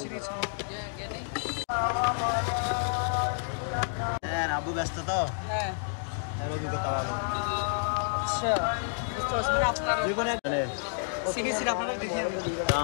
আবু ব্যস্ত তো হ্যাঁ অভিজ্ঞতা ভালো বুঝতে পারছি মানে আপনার সিরিজ আপনারা দেখি আমি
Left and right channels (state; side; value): silent; right; digital silence